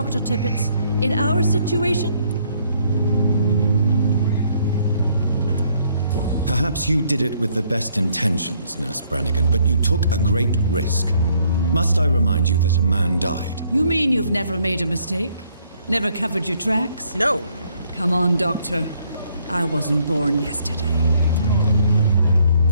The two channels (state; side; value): inverted; both; correlation -0.67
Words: Tippett in our situation? Perhaps you did it with the best intentions, Nurse Brannigan, but you took a great risk. Must I remind you that a man died? You mean you've never made a mistake? Never covered your tracks? No. Come on, Doctor. I wasn't born yesterday.